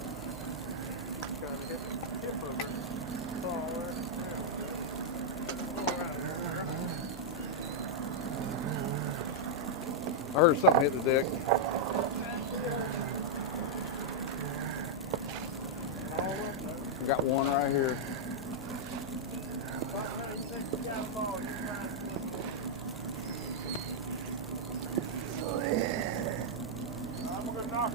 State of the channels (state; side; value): normal; both; correlation -0.04